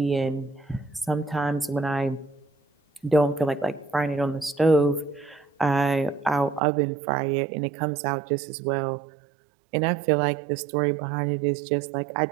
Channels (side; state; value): left; drops out; at 6.6 s